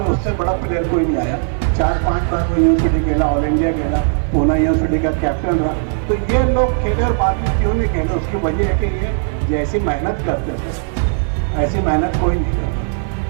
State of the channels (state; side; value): silent; left; digital silence